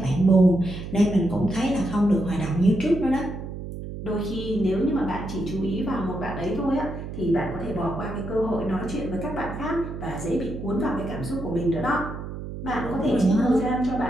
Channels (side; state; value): right; noise; hum, 8 dB below the sound